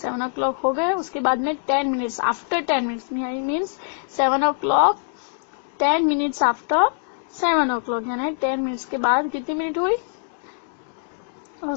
o'clock हो गए, उसके बाद में 10 मिनट्स आफ्टर 10 मिनट्स मीन्स 7 o'clock 10 मिनट्स आफ्टर 7 o'clock, यानी 10 मिनट्स के बाद कितनी मिनट हुई,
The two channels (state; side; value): silent; right; digital silence